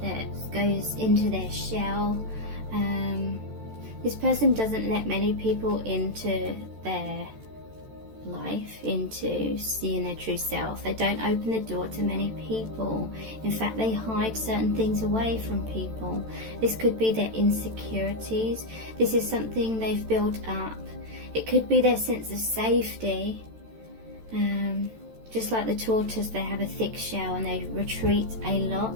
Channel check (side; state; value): left; late; 13 ms